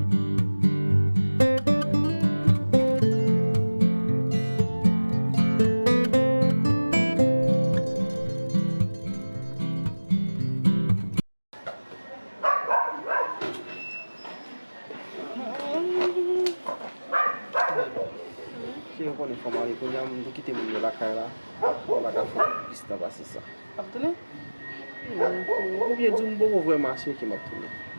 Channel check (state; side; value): inverted; both; correlation -1.00